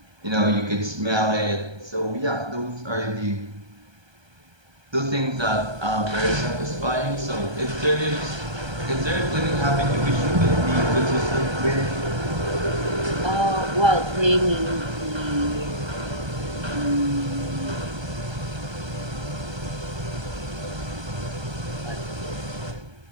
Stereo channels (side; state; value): left; late; 1.3 ms